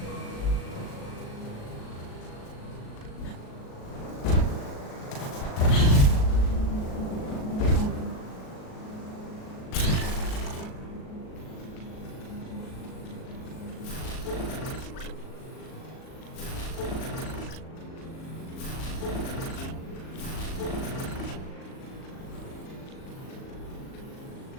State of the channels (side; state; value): right; late; 37 ms